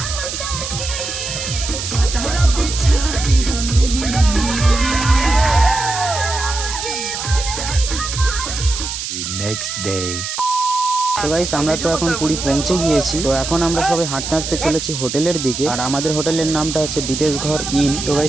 Next day. তো গাইস, আমরা তো এখন পুরী পৌঁছে গিয়েছি। তো এখন আমরা সবাই হাঁটতে হাঁটতে চলেছি হোটেলের দিকে, আর আমাদের হোটেলের নামটা হচ্ছে বিদেশ ঘর ইন। তো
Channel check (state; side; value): noise; right; hiss, 5 dB below the sound